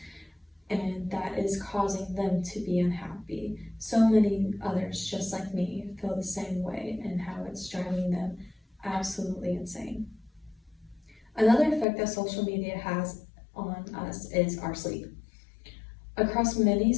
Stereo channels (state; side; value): drops out; right; at 11.9 s